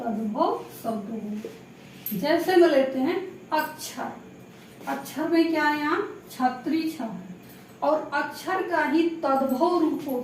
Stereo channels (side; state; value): both; identical; correlation 1.00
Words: शब्द होगा। जैसे में लेते हैं अक्षर, अक्षर में क्या है यहाँ छत्री छ है और अक्षर का ही तद्भव रूप